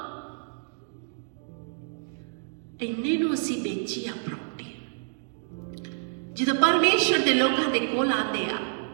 ਇੰਨੇ ਨੂੰ ਅਸੀਂ ਵੇਚੀ ਆ ਪ੍ਰਾਪਰਟੀ। ਜਦੋਂ ਪਰਮੇਸ਼ਰ ਦੇ ਲੋਕਾਂ ਦੇ ਕੋਲ ਆਉਂਦੇ ਆ,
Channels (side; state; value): left; silent; digital silence